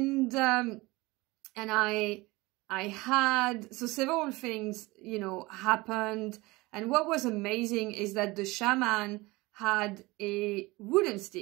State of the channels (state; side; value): quieter; left; 22.0 dB